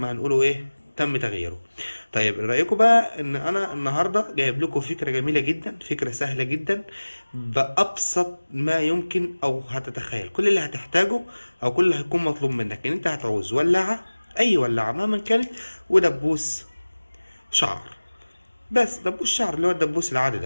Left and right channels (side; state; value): both; inverted; correlation -1.00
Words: هنقوله ايه تم تغييره. طيب إيه رايكم بقى ان انا النهارده جايب لكم فكره جميله جدا، فكره سهله جدا بابسط ما يمكن او هتتخيل. كل اللي هتحتاجه او كل اللي هيكون مطلوب منك ان انت هتعوز ولاعه، اي ولاعه مهما كانت، ودبوس شعر. بس دبوس شعر اللي هو الدبوس العادي